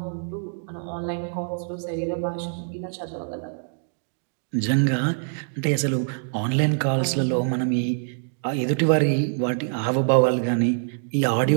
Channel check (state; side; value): silent; left; digital silence